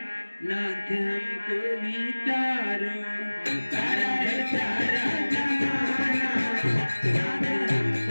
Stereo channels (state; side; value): inverted; both; correlation -1.00